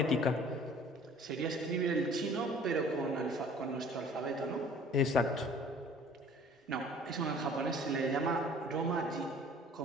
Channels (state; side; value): normal; both; correlation 0.50